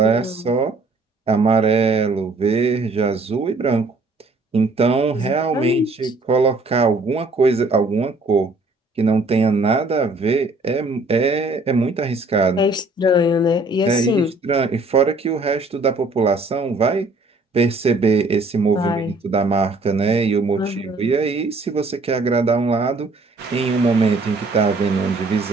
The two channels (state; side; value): quieter; left; 3.1 dB